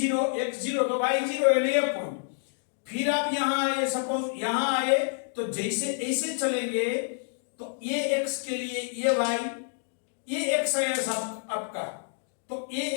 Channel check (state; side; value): silent; right; digital silence